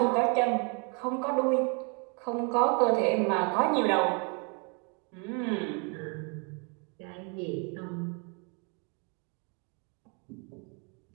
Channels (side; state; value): left; quieter; 35.1 dB